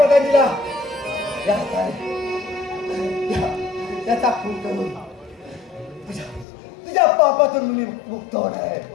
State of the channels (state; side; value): drops out; right; at 6.5 s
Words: त्याचा खून करून तुझ्या पापातून मी मुक्त होणार आहे.